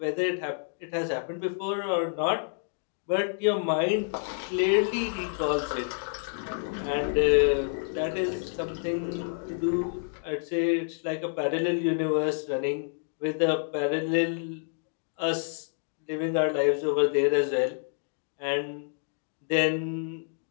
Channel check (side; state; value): right; silent; digital silence